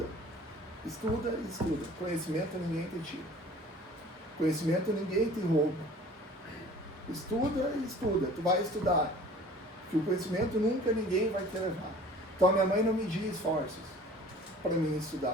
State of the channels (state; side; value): normal; both; correlation 0.48